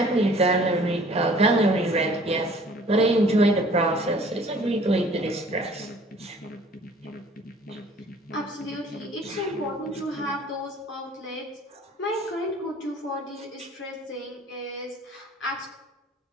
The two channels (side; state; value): both; normal; correlation 0.53